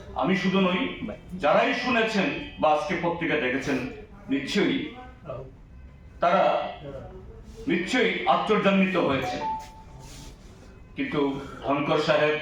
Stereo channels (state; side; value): identical; both; correlation 1.00